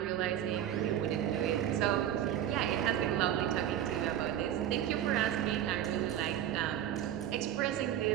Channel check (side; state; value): left; quieter; 11.0 dB